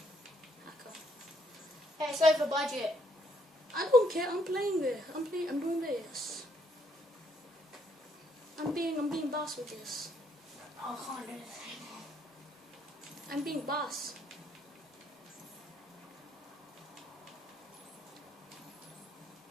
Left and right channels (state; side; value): normal; both; correlation 0.70